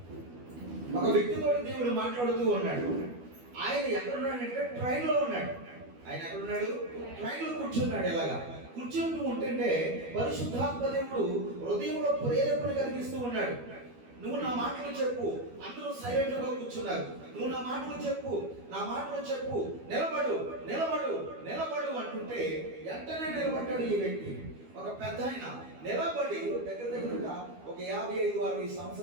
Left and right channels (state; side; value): late; left; 12 ms